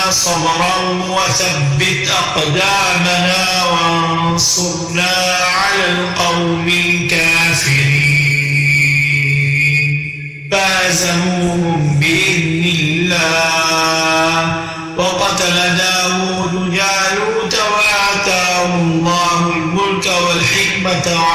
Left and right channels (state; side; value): identical; both; correlation 1.00